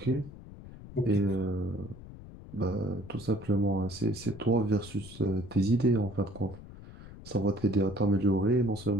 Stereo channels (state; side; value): noise; left; rumble, 16 dB below the sound